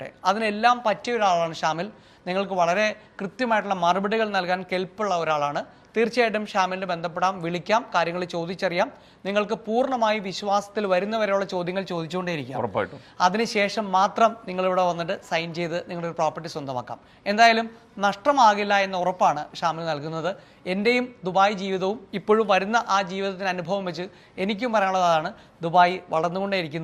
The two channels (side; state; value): both; identical; correlation 1.00